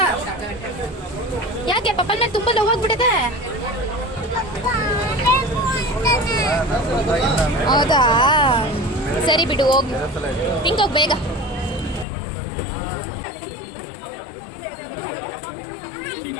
ಯಾಕೆ ಪಪ್ಪನ ಮೇಲೆ ತುಂಬ ಲವ್ ಆಗ್ಬಿಟ್ಟಿದೆ? ಹೌದಾ? ಸರಿ ಬಿಡು, ಹೋಗಿ ಹಿಂಗೋಗಿ ಬೇಗ.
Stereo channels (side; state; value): right; drops out; at 12.1 s